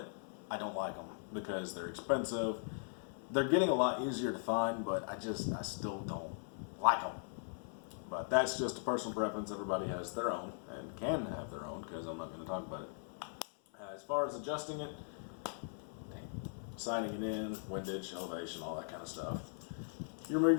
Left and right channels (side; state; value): right; silent; 51 dB below the other